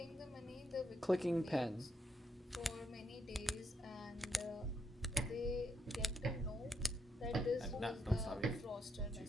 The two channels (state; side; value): normal; both; correlation 0.78